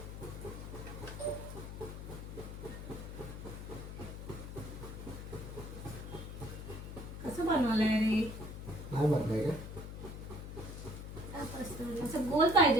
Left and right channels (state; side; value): noise; left; hum, 8 dB below the sound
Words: कसं बनवलंय रे? नाही बनलाय का? असं गोल